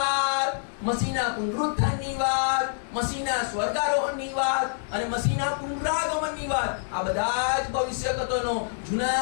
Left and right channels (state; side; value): silent; right; digital silence